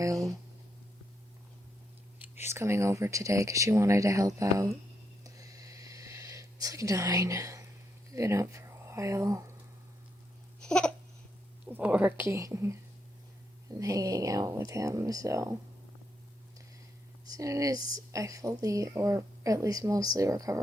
She's coming over today because she wanted to help out. It's like 9. We've been up for a while. Working and hanging out with him, so as soon as I fully, or at least mostly,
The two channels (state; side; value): normal; both; correlation 0.80